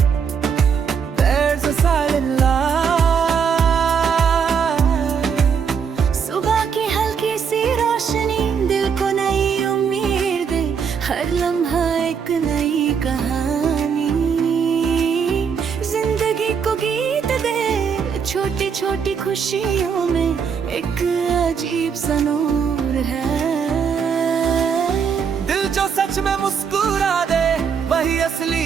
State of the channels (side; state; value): left; quieter; 6.6 dB